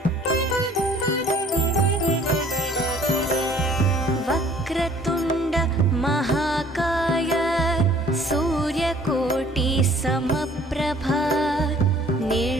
वक्रतुण्ड महाकाय सूर्यकोटि समप्रभा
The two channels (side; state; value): both; normal; correlation 0.55